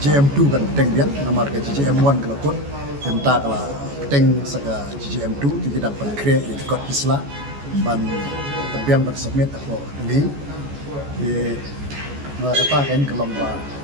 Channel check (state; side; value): late; left; 14 ms